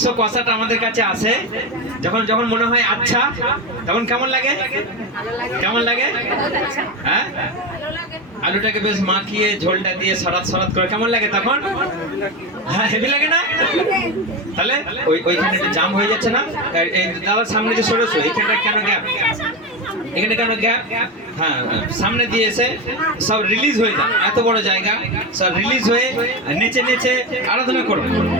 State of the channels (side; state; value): both; normal; correlation 0.18